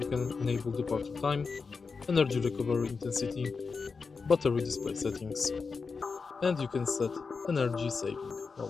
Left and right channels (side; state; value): right; quieter; 4.9 dB